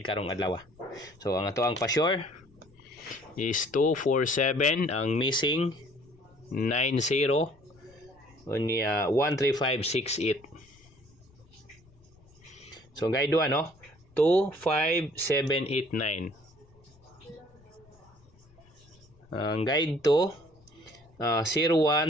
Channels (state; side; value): noise; left; rumble, 29 dB below the sound